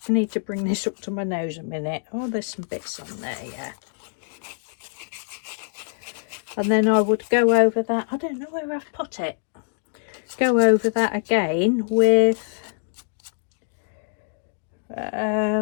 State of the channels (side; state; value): right; silent; digital silence